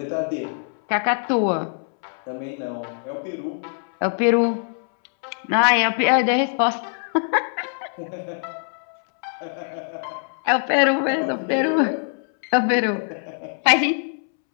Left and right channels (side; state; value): right; silent; 63 dB below the other